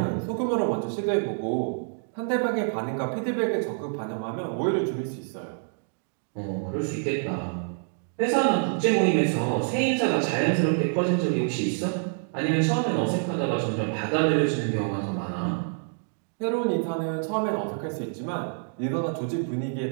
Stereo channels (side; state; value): left; silent; 60 dB below the other